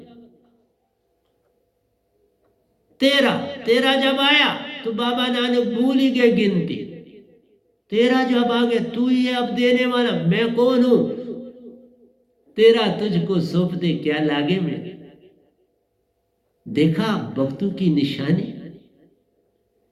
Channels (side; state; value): both; identical; correlation 1.00